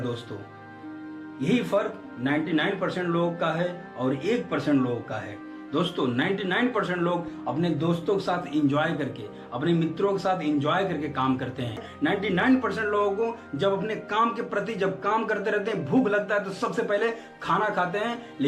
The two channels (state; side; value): identical; both; correlation 1.00